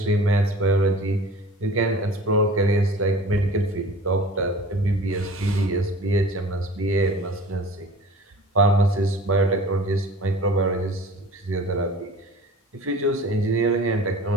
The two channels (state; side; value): normal; both; correlation 0.42